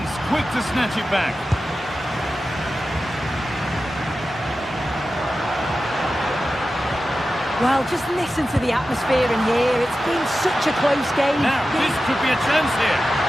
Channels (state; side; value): normal; both; correlation 0.93